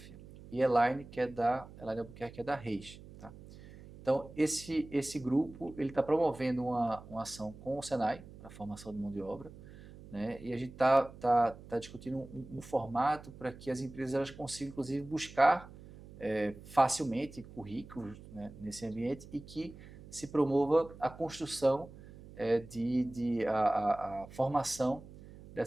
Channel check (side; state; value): right; noise; hum, 17 dB below the sound